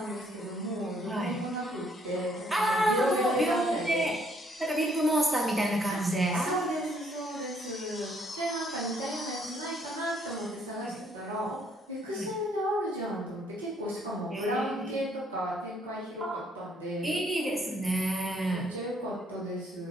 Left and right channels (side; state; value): both; normal; correlation 0.66